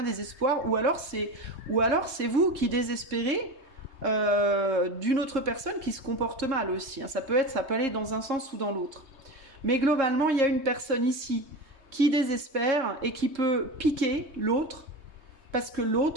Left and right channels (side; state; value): left; late; 3.2 ms